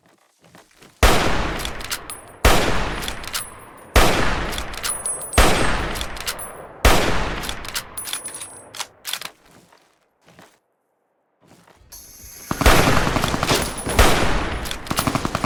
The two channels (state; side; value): identical; both; correlation 1.00